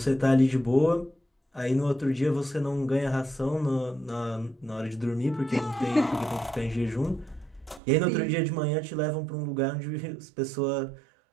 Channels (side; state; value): left; drops out; at 7.8 s